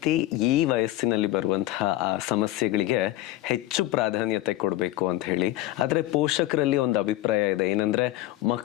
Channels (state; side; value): quieter; right; 15.8 dB